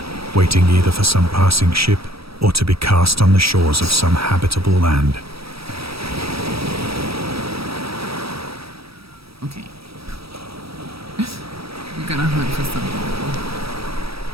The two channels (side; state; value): left; late; 0.77 ms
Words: waiting either for some passing ship or to be cast on the shores of some habitable land. Okay. We're gonna hunt for something.